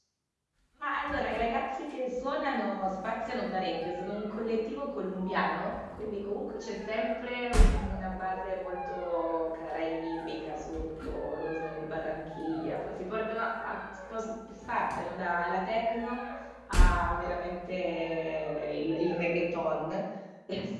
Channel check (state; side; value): identical; both; correlation 1.00